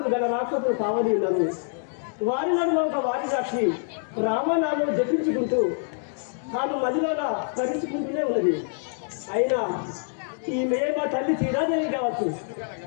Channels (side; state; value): right; silent; digital silence